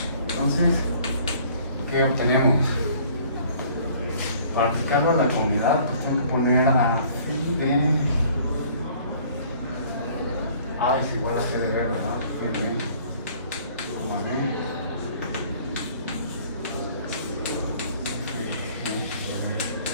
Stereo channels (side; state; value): both; inverted; correlation -0.55